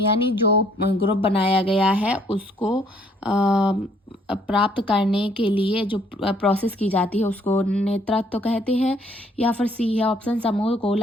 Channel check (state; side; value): normal; both; correlation 0.63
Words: जो ग्रुप बनाया गया है उसको प्राप्त करने के लिए जो प्रोसेस की जाती है उसको नेतृत्व कहते हैं। या फिर सी है ऑप्शन, समूह को